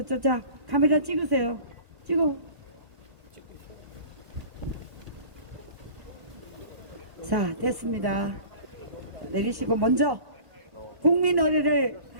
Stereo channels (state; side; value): late; left; 1.1 ms